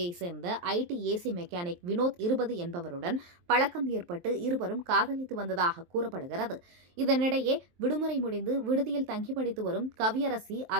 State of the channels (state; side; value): late; left; 23 ms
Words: சேர்ந்த ஐடி ஏசி மெக்கானிக் வினோத் 20 என்பவருடன் பழக்கம் ஏற்பட்டு இருவரும் காதலித்து வந்ததாக கூறப்படுகிறது. இதனிடையே விடுமுறை முடிந்து விடுதியில் தங்கி படித்து வரும் கவியரசி